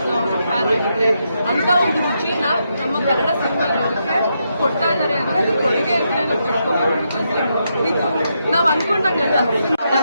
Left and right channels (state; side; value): inverted; both; correlation -0.81